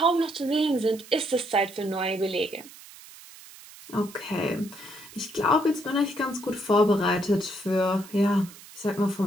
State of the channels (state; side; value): noise; right; hiss, 19 dB below the sound